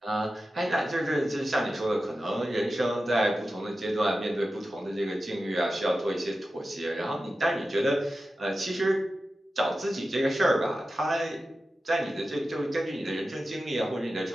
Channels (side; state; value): both; normal; correlation 0.93